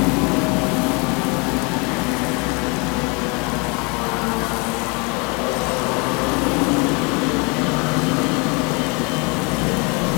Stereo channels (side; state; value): right; quieter; 30.5 dB